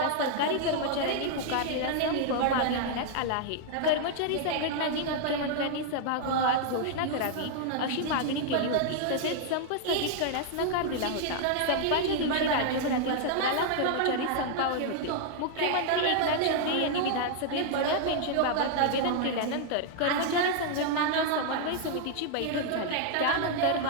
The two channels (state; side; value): different; both; correlation -0.01